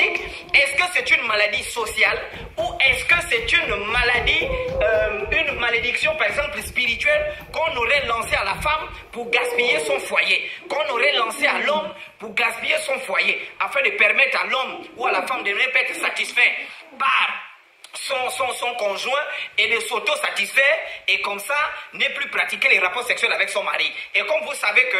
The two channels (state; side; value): identical; both; correlation 1.00